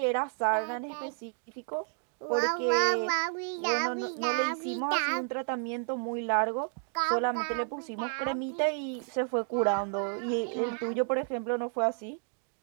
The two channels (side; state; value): left; silent; 56 dB below the other